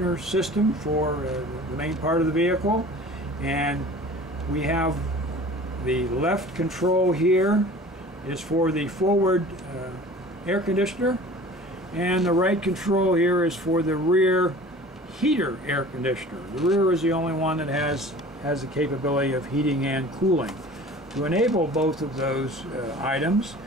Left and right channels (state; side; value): normal; both; correlation 0.43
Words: system for the main part of the vehicle, and we have the left control here is for the forward air conditioner, and the right control here is for the rear heater air conditioner. The rear is the only one that has the capability of heating and cooling. To enable both of those items,